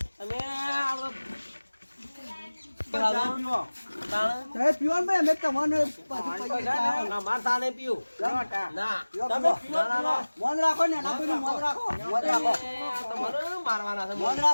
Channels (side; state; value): both; inverted; correlation -1.00